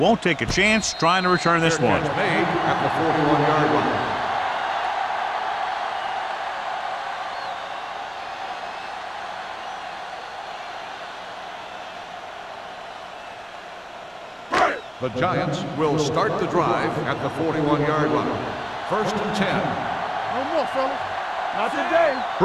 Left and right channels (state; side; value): identical; both; correlation 1.00